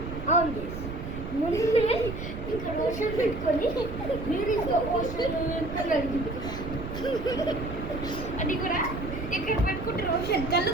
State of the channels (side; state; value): right; noise; rumble, 8 dB below the sound